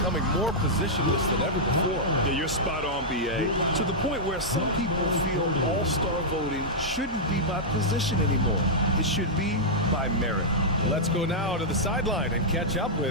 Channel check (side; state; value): both; normal; correlation -0.08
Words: more positionless than ever before. Yeah, you're spot on, BA. To the point where some people feel all-star voting shouldn't be by position anymore. It should be by merit. Let's go now to the sideline and catch up